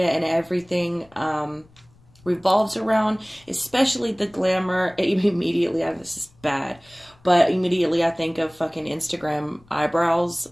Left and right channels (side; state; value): left; noise; rumble, 29 dB below the sound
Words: and everything revolves around, especially the glamour. Immediately, this is bad, but immediately I think of fucking Instagram eyebrows.